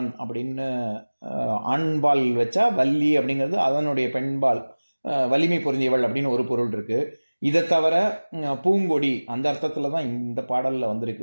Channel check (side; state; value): both; inverted; correlation -1.00